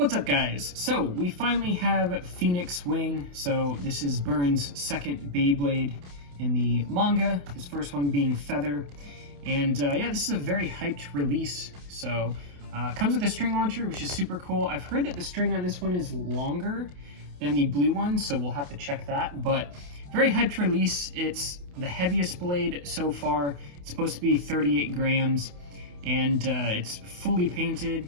up, guys? So we finally have Phoenix Wing. So this is Burn's second Beyblade in the manga, his first one being Feather. And yeah, this is a very hyped release. So comes with a string launcher, which is super cool. I've heard that the string on this one is longer than the blue one, so we'll have to check that. But very hyped release. It's the heaviest blade so far. It's supposed to be 38 grams, and it's fully painted.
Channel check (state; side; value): late; left; 28 ms